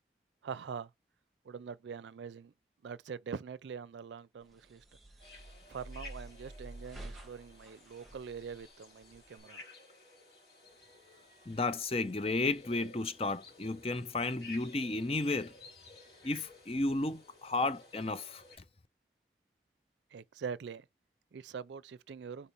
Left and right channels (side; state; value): both; normal; correlation 0.39